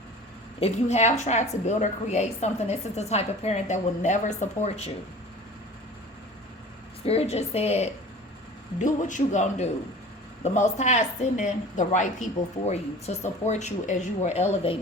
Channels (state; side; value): normal; both; correlation 0.41